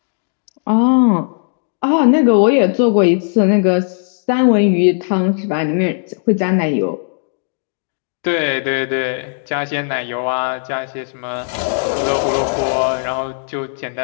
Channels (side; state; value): right; silent; 68 dB below the other